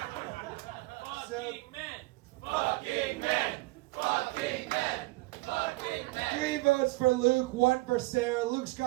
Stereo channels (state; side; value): quieter; left; 21.8 dB